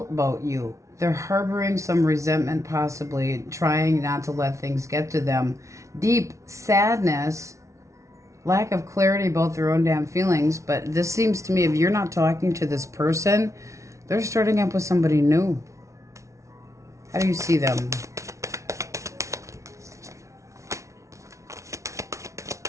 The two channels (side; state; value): left; late; 0.14 ms